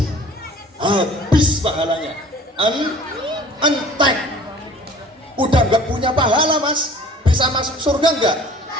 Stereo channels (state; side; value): normal; both; correlation 0.48